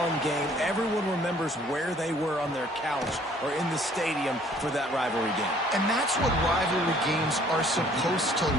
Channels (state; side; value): normal; both; correlation 0.58